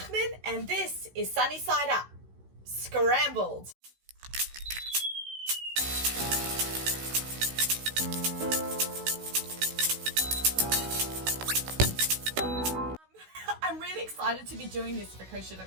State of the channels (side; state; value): left; late; 16 ms